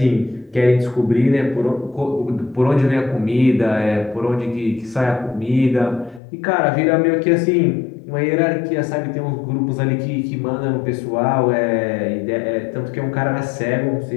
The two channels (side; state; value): right; drops out; at 6.2 s